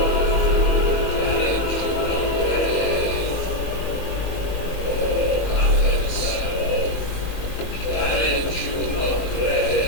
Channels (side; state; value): right; late; 21 ms